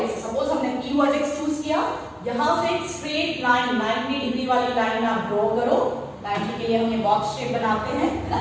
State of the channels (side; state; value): both; identical; correlation 1.00